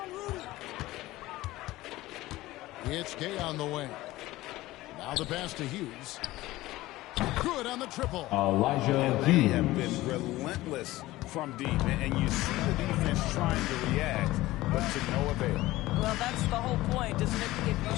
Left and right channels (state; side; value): quieter; right; 17.6 dB